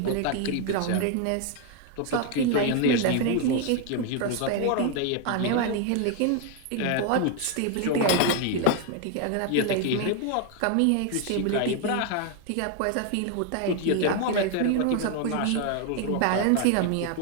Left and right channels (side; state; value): both; different; correlation 0.01